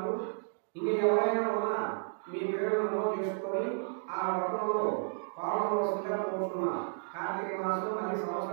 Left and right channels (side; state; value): left; silent; digital silence